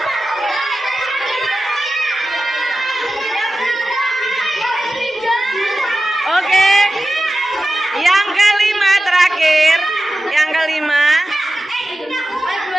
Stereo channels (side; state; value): both; normal; correlation 0.94